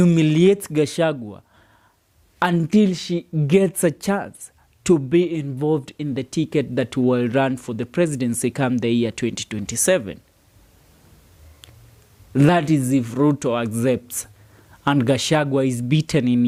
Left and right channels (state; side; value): identical; both; correlation 1.00